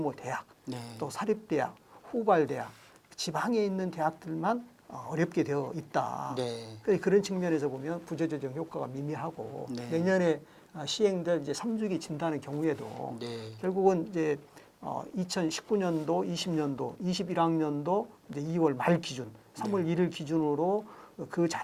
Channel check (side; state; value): both; identical; correlation 1.00